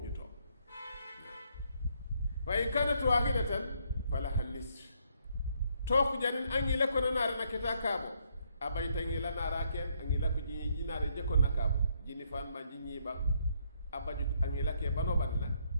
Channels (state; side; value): inverted; both; correlation -0.72